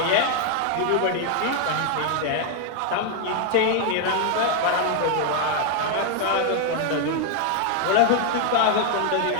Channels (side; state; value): both; different; correlation 0.00